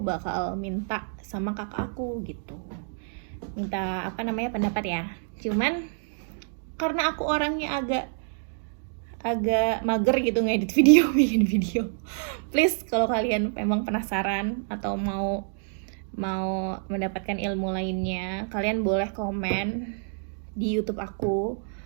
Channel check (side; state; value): left; silent; digital silence